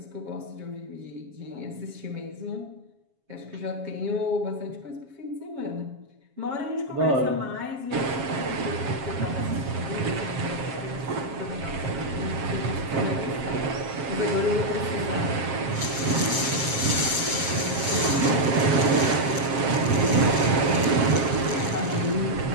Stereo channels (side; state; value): left; late; 7.4 ms